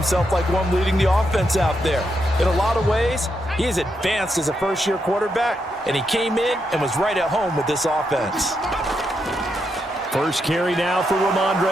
like one leading the offense out there. In a lot of ways, he is advanced as a first-year quarterback, and he came in and was right at home with this offense. First carry now for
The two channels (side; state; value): both; normal; correlation 0.82